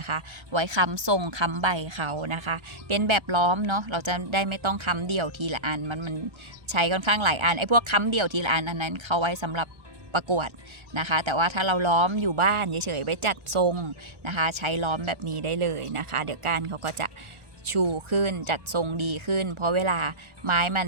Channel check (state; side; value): late; left; 1.4 ms